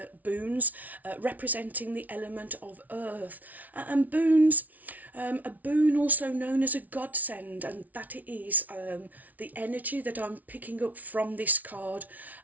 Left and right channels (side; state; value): left; late; 0.075 ms